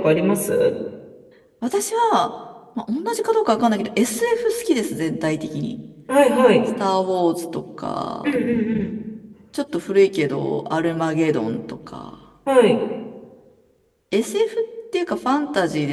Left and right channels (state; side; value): identical; both; correlation 1.00